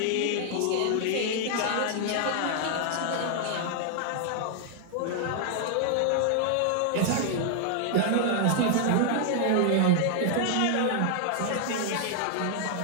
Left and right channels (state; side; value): different; both; correlation 0.00